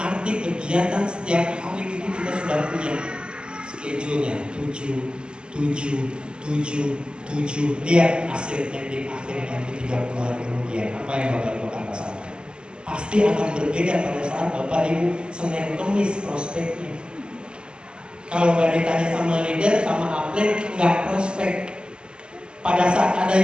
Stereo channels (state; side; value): late; left; 0.049 ms